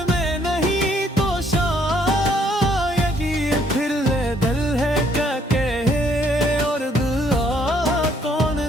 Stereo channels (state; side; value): normal; both; correlation 0.67